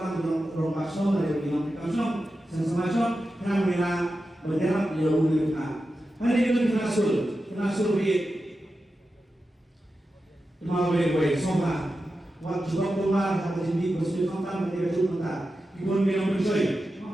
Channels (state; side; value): normal; both; correlation 0.91